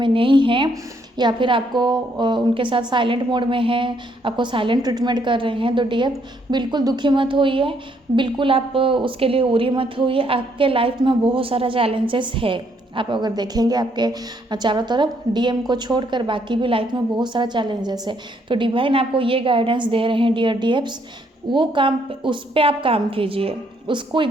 नहीं हैं या फिर आपको उनके साथ साइलेंट मोड में हैं, आपको साइलेंट ट्रीटमेंट कर रहे हैं, तो डीएफ बिल्कुल दुखी मत होइए, बिल्कुल आप उसके लिए उरी मत होइए। आपके लाइफ में बहुत सारा चैलेंजेस है, आप अगर देखेंगे आपके चारों तरफ डीएम को छोड़कर बाकी भी लाइफ में बहुत सारा चैलेंजेस है। तो डिवाइन आपको ये गाइडेंस दे रहे हैं डियर डीएफ्स, वो काम उस पर आप काम कीजिए, उसको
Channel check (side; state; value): both; normal; correlation 0.70